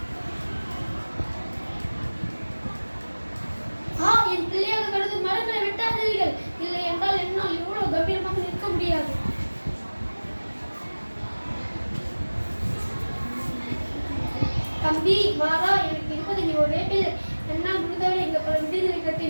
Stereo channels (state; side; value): inverted; both; correlation -1.00